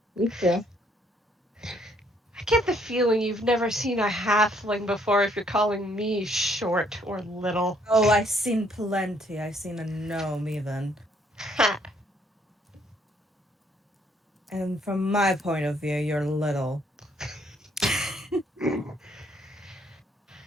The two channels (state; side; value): normal; both; correlation 0.66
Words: You too. I get the feeling you've never seen a halfling before if you're calling me short or little. Oh, I've seen plenty. I've seen a gnome even. And from my point of view, you're little.